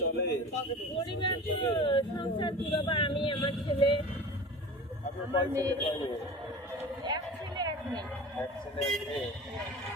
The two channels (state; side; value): normal; both; correlation 0.36